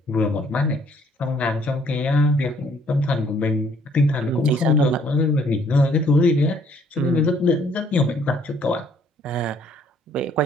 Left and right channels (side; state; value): both; normal; correlation 0.63